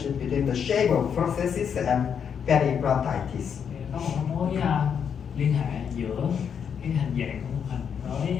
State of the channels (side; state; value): right; quieter; 7.5 dB